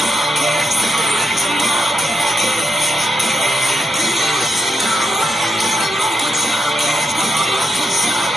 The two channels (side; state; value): both; normal; correlation 0.82